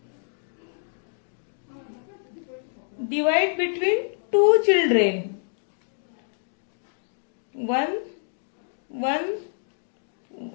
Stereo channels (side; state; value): right; silent; digital silence